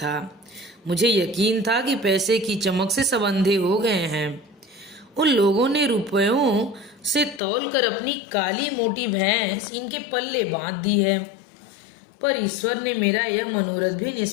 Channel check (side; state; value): right; drops out; at 7.4 s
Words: मुझे यकीन था कि पैसे की चमक से सब अंधे हो गए हैं। उन लोगों ने रुपयों से तौल कर अपनी काली मोटी भैंस इनके पल्ले बांध दी है, पर ईश्वर ने मेरा यह मनोरथ भी